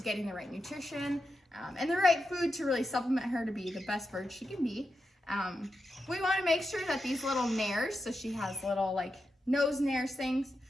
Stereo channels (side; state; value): both; normal; correlation 0.88